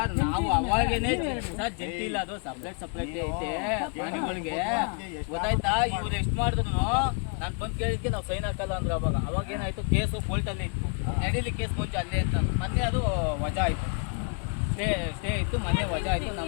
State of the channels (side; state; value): right; quieter; 38.2 dB